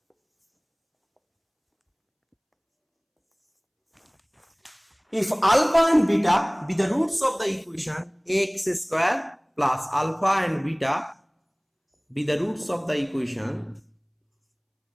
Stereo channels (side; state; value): both; identical; correlation 1.00